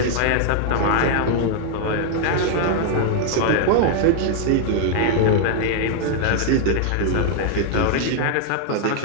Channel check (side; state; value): both; different; correlation 0.00